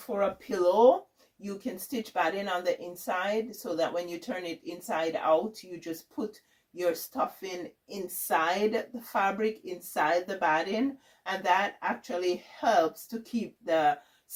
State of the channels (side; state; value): both; identical; correlation 1.00